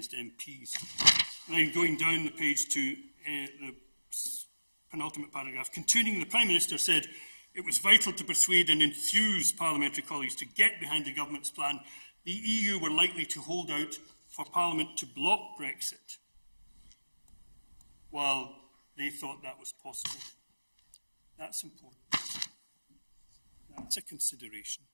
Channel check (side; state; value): both; inverted; correlation -1.00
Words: MPs. And then going down the page to the penultimate paragraph, continuing, the Prime Minister said it was vital to persuade and enthuse parliamentary colleagues to get behind the government's plan. The EU were likely to hold out for Parliament to block Brexit, while they thought that was possible. That's important. That's a consideration.